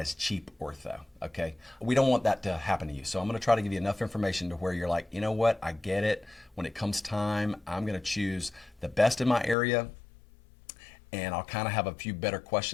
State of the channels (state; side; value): drops out; right; at 9.6 s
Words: cheap ortho, okay? We don't want that to happen to you. So I'm gonna try to give you enough information to where you're like, you know what, I get it. When it comes time, I'm gonna choose the best in my area, and I'll kind of have a few better